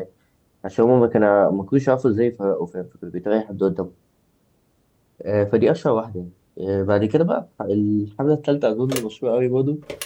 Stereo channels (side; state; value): both; identical; correlation 1.00